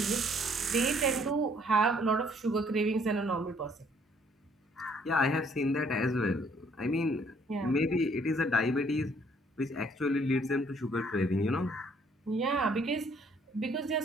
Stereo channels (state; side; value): normal; both; correlation 0.63